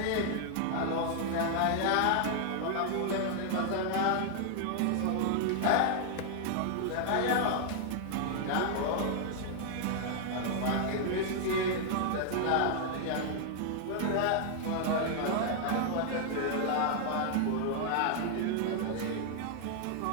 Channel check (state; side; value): different; both; correlation -0.01